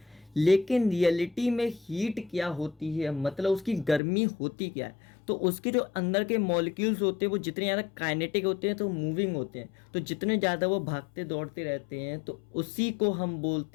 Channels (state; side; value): drops out; right; at 4.0 s